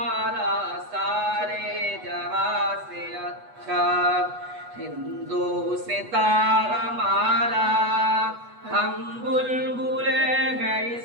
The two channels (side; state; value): left; late; 8.2 ms